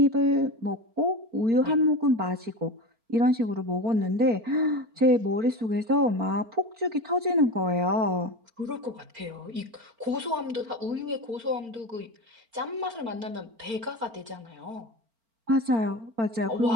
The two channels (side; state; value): left; late; 4.4 ms